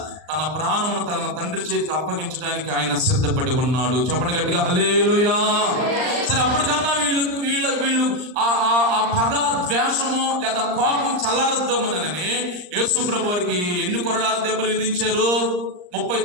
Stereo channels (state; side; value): late; left; 39 ms